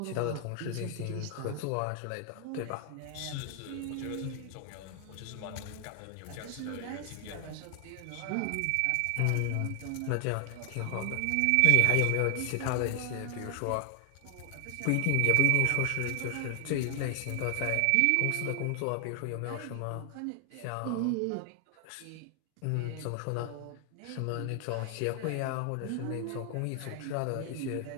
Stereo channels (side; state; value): both; different; correlation 0.00